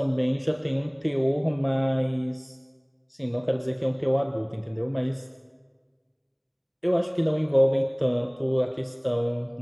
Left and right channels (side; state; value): both; identical; correlation 1.00